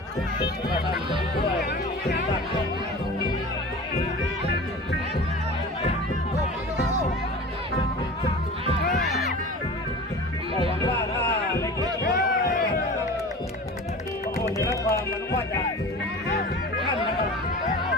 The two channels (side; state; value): both; normal; correlation 0.36